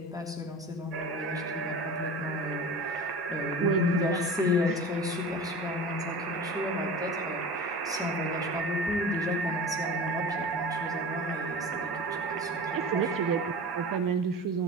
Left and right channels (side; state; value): both; normal; correlation 0.35